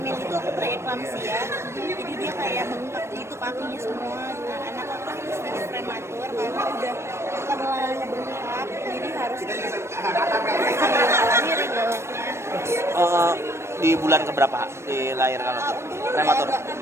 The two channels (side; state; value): left; late; 0.13 ms